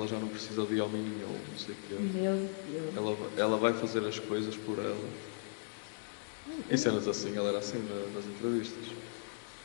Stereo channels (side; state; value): right; silent; digital silence